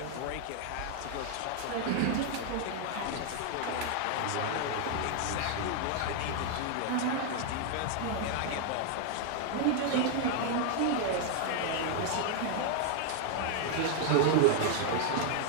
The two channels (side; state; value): both; different; correlation 0.00